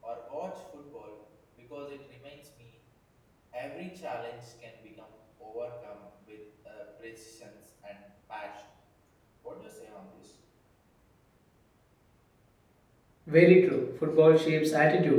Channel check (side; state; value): both; identical; correlation 1.00